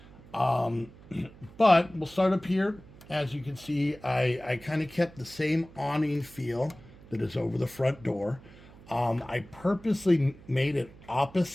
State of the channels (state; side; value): noise; right; hum, 21 dB below the sound